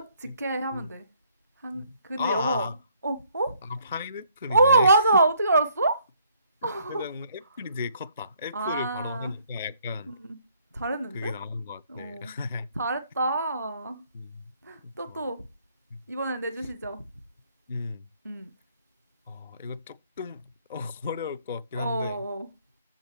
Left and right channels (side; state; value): both; inverted; correlation -0.66